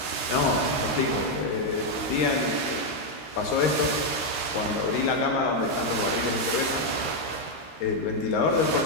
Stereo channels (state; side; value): late; right; 13 ms